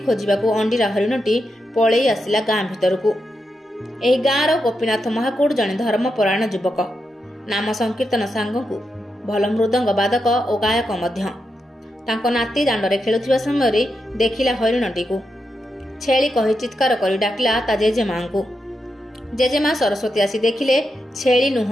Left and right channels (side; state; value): both; normal; correlation 0.86